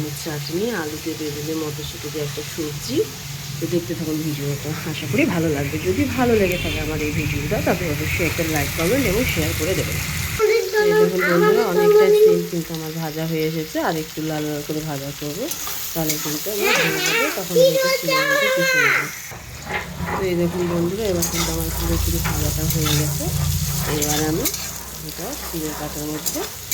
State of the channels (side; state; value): both; identical; correlation 1.00